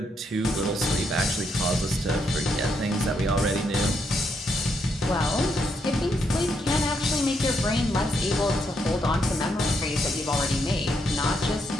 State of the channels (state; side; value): normal; both; correlation 0.77